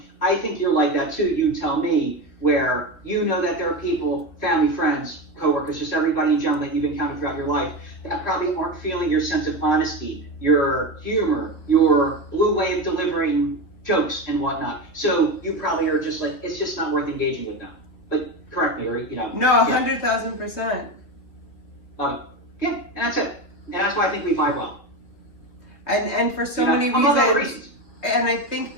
I think you're like that too. You tell me, where you know that there are people, family, friends, coworkers, just everybody in general that you've encountered throughout your life that probably aren't feeling your sense of honesty, your humor, your blue way of delivering jokes and whatnot. So you probably are just like, it's just not worth engaging with them. But correct me, or No, 100,000%. Yeah, and that's it. And that's why I think we vibe well. And for so many reasons. And I think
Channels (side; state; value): right; late; 3.0 ms